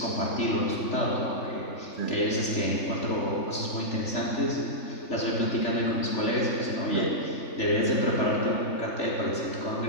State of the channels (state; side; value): late; right; 3.4 ms